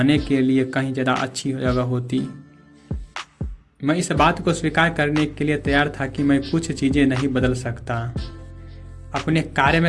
के लिए कहीं ज़्यादा अच्छी जगह होती। मैं इस बात को स्वीकार करने के लिए तैयार था कि मैं कुछ चीज़ें नहीं बदल सकता। अपने कार्य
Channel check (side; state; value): both; identical; correlation 1.00